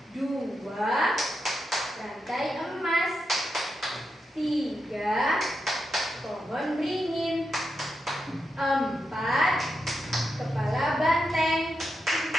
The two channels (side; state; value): both; normal; correlation 0.86